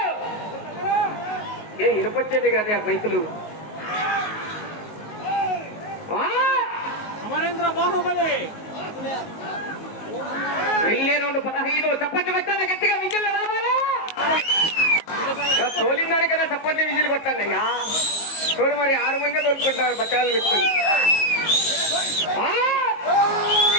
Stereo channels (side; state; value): right; late; 19 ms